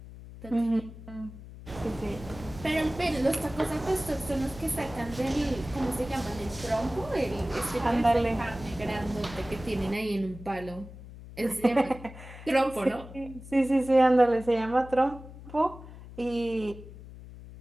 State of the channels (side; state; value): left; noise; hum, 15 dB below the sound